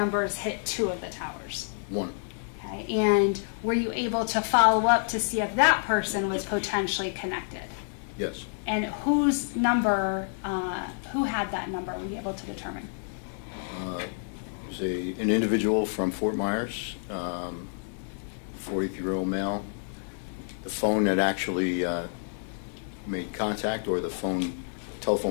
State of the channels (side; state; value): right; silent; digital silence